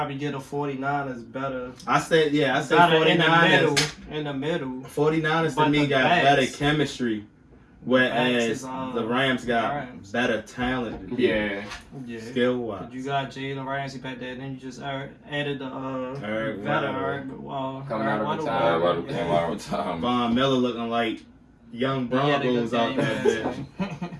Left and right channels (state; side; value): identical; both; correlation 1.00